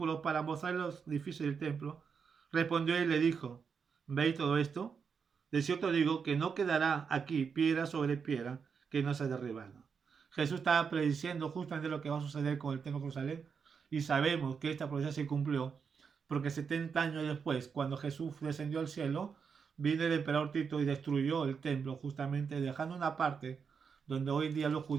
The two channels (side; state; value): left; quieter; 6.1 dB